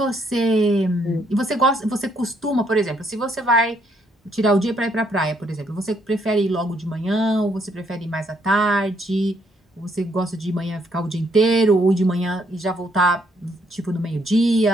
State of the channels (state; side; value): normal; both; correlation 0.71